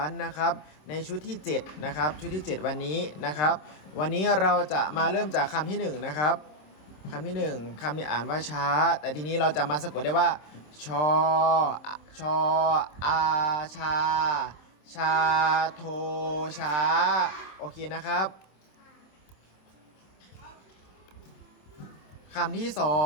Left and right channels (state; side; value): late; right; 27 ms